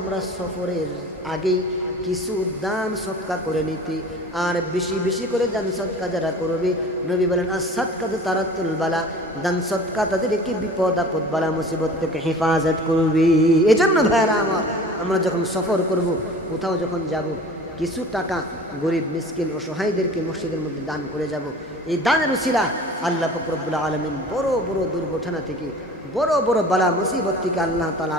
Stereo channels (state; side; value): normal; both; correlation 0.42